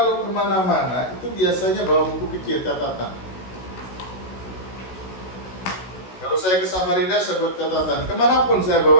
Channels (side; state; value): right; late; 16 ms